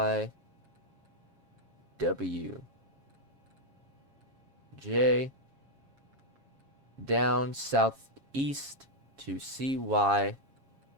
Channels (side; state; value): left; late; 7.3 ms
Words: down southeast to CYZF.